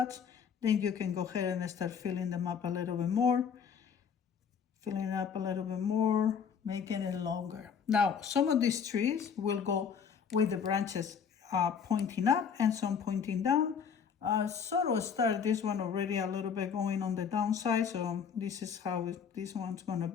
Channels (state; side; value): quieter; right; 7.0 dB